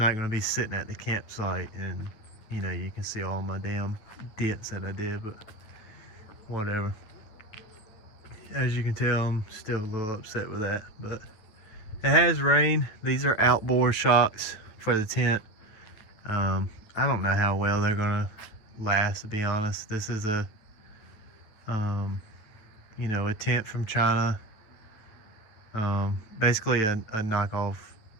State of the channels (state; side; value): late; right; 9.5 ms